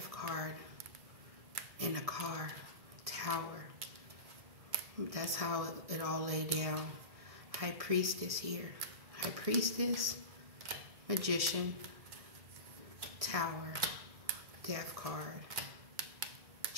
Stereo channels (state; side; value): late; left; 1.1 ms